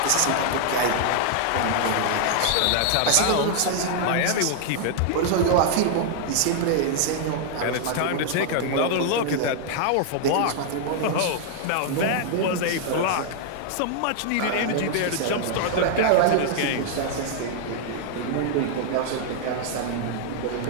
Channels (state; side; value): different; both; correlation 0.00